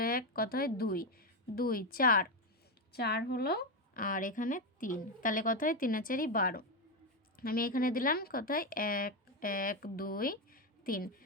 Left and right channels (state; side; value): normal; both; correlation 0.09